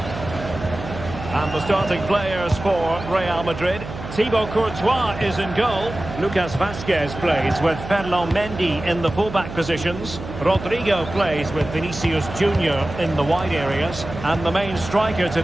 And the starting players for Real Madrid. Thibaut Courtois is in goal. Lucas Vazquez plays with Ferland Mendy in the fullback positions. Rodrigo plays with Vinicius Junior in the wide areas. And the main striker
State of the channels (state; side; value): noise; right; hum, 11 dB below the sound